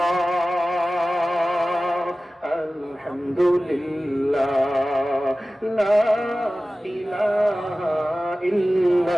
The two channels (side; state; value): both; normal; correlation 0.96